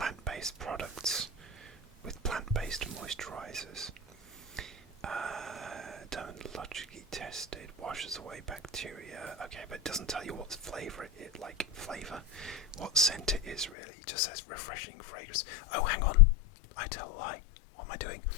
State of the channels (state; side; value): drops out; right; at 13.7 s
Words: products with plant-based moisturizers. Dermatologically tested. Washes away bacteria. Okay, but it doesn't tell you what flavor what scent it is really. It just says refreshing fragrance. Oh, hang on. I tell a lie. What am I doing?